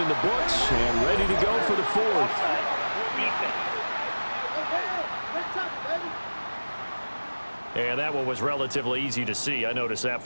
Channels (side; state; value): both; inverted; correlation -1.00